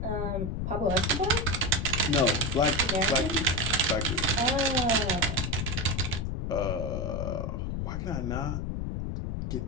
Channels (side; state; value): left; noise; rumble, 2 dB below the sound